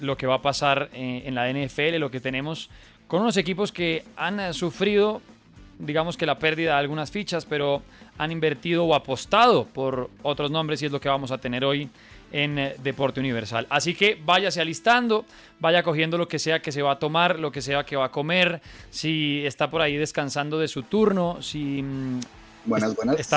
lo que va a pasar en la NFL, lo que tenemos con unos equipos que han sufrido, digamos que la pérdida de algunas fichas, pero han invertido o apostado por otros nombres y es lo que vamos a tener hoy en Deporte Universal. Así que váyase alistando, vaya cogiendo lo que sea que se va a tomar, lo que sea que va a comer, si está por ahí descansando de su turno, si buenas.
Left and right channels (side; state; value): both; identical; correlation 1.00